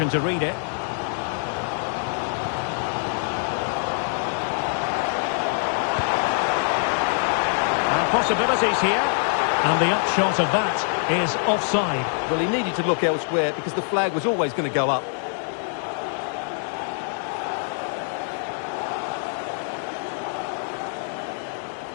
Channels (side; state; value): right; silent; 62 dB below the other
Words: to read it. Possibilities here, and the upshot of that is offside. Well, he needed to look elsewhere because the flag was always going to go up.